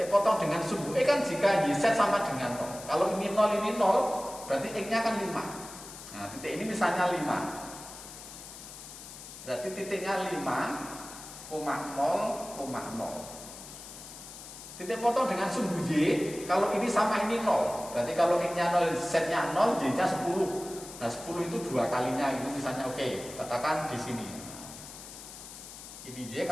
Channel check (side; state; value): left; noise; hiss, 14 dB below the sound